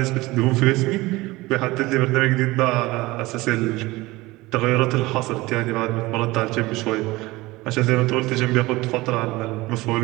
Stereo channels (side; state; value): left; quieter; 20.4 dB